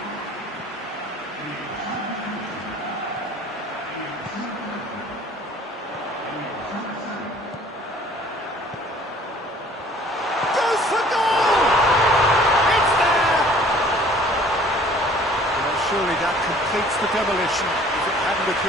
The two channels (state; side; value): normal; both; correlation 0.53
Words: Goes for goal! It's there! Well, surely that completes the demolition if it hadn't